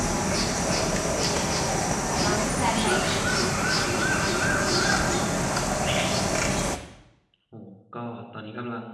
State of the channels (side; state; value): both; identical; correlation 1.00